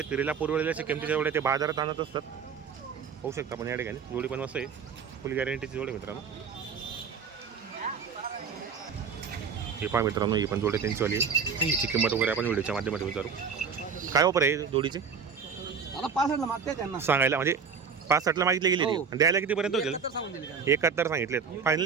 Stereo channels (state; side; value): quieter; left; 6.1 dB